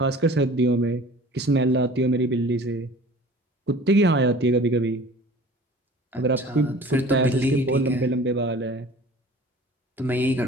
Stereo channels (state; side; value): normal; both; correlation 0.45